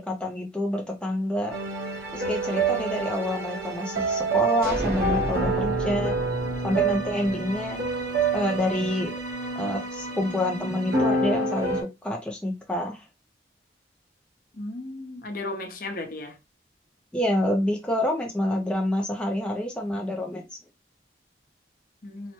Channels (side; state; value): both; normal; correlation 0.53